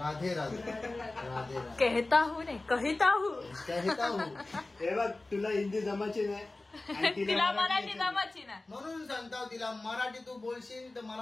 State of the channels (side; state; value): right; quieter; 3.0 dB